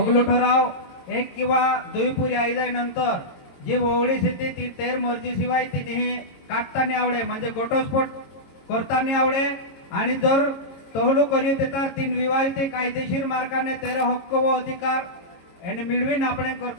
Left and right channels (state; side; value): late; right; 22 ms